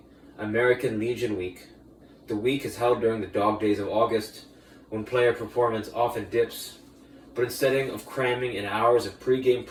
American Legion Week. The week is held during the dog days of August, when player performance often dips. But instead of cramming in hours of pre-game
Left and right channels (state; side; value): identical; both; correlation 1.00